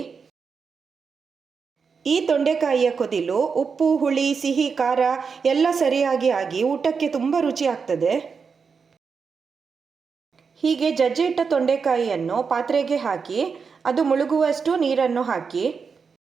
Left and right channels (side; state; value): left; quieter; 5.6 dB